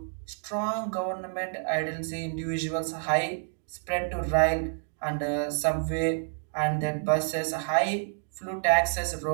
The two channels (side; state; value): left; silent; digital silence